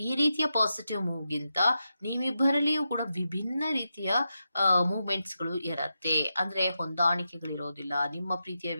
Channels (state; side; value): inverted; both; correlation -0.88